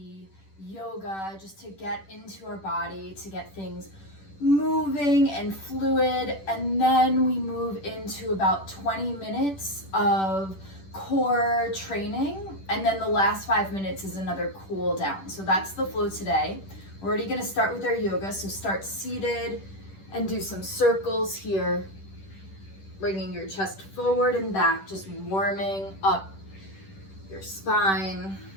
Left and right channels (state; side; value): late; right; 10 ms